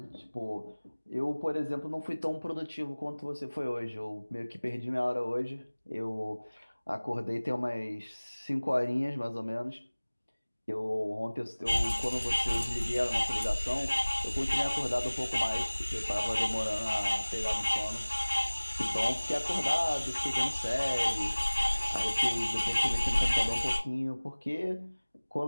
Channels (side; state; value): both; inverted; correlation -1.00